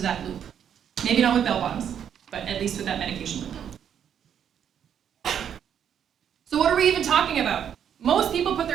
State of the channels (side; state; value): left; quieter; 8.8 dB